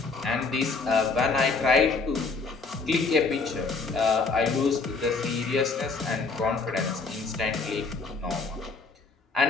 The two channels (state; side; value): quieter; right; 4.3 dB